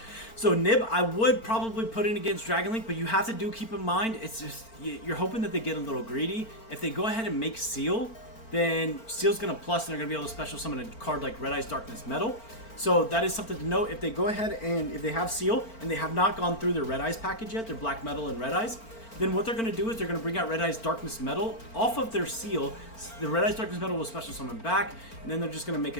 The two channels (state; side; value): late; right; 4.4 ms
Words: So Nib, I would probably put in against Dragon Link, but you have to keep in mind, it's just, you're hoping that they get a little greedy. If they go ahead and make Seal, then Seal's going to plus, and they're going to be able to special summon a card like Red Eyes Darkness Metal. So that is something to note. If they go ahead and if they have Seal, and they have not gone through their Red Eyes package yet, their Black Metal and Red Eyes, then what they're going to do is they're going to bring out Red Eyes Darkness Metal off of their Seal. The Red Eyes Darkness Metal will special summon back, and then they're just going to make